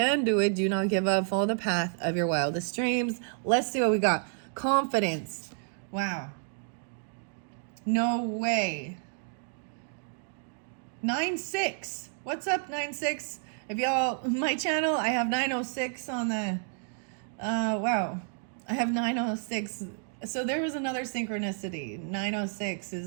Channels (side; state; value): left; silent; 58 dB below the other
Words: do it. Do not give up. Follow the path of your wildest dreams. Let's see what we got. Confidence. Wow. No way. 9-6. What's up, 9-6? If y'all, my channel, I have 906 on the, wow. I have 906. So there was another synchronicity. 906